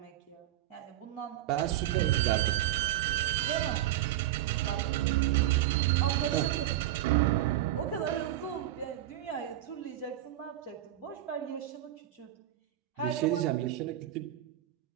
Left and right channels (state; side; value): quieter; left; 13.5 dB